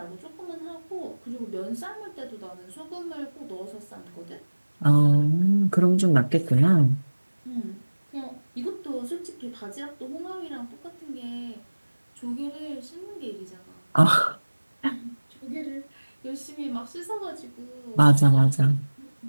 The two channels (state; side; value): inverted; both; correlation -1.00